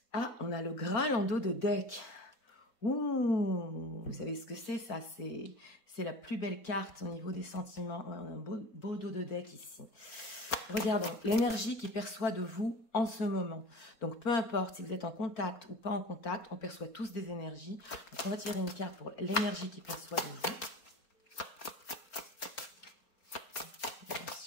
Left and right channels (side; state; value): right; late; 4.2 ms